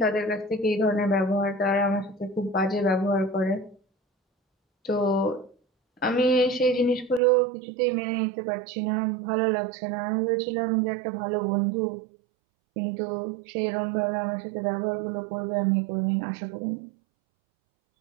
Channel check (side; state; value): left; drops out; at 7.2 s